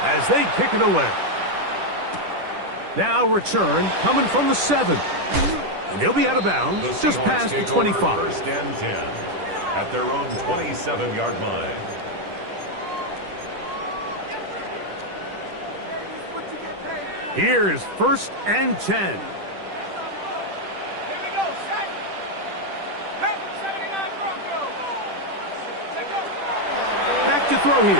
as they kick it away. Now return coming from the 7. And he'll be out of bounds just past the 25. First and 10 at their own 27-yard line. Here is first and 10. Here we go, set. Panther 79 Broncos. Let's go. Back to throw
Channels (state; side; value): late; left; 10 ms